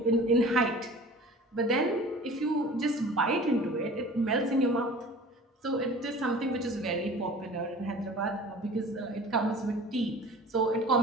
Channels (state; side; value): normal; both; correlation 0.43